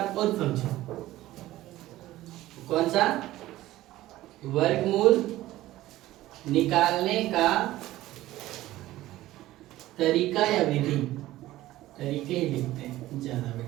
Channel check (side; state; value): left; quieter; 15.8 dB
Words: और समझो। कौन सा? वर्गमूल निकालने का तरीका या विधि, तरीके ही लिखते हैं ज्यादा